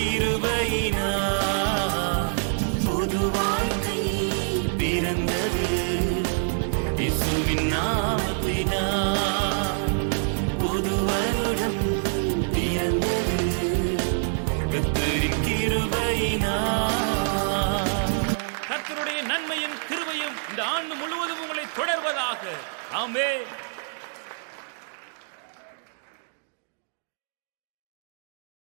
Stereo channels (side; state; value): left; silent; digital silence